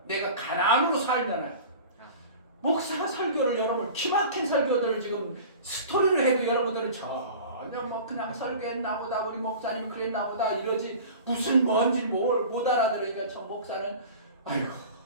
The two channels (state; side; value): inverted; both; correlation -0.39